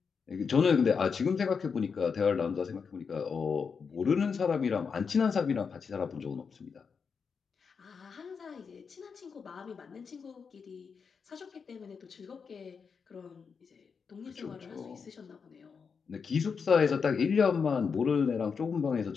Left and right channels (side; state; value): right; quieter; 5.8 dB